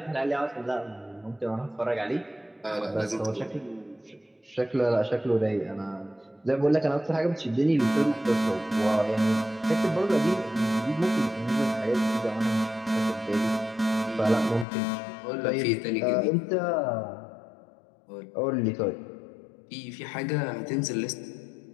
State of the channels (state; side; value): drops out; right; at 14.7 s